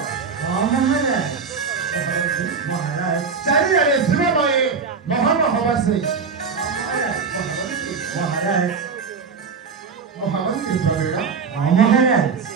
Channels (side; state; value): left; quieter; 5.4 dB